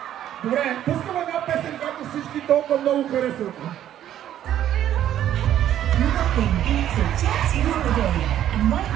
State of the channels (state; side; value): quieter; left; 11.3 dB